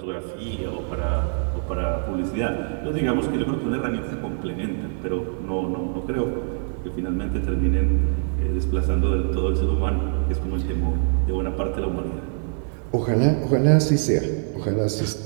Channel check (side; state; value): left; silent; 61 dB below the other